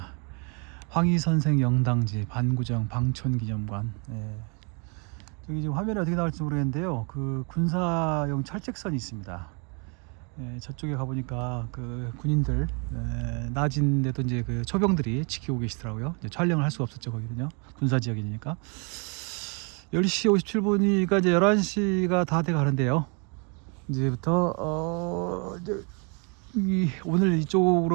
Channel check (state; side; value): quieter; left; 34.9 dB